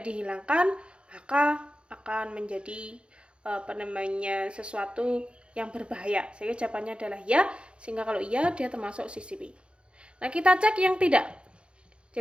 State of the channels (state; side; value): late; left; 0.056 ms